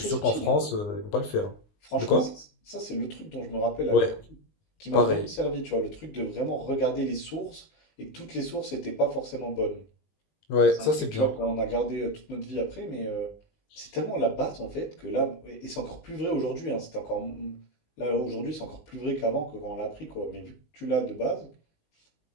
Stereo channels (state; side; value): late; right; 19 ms